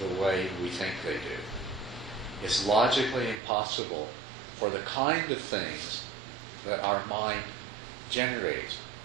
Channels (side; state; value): left; drops out; at 3.4 s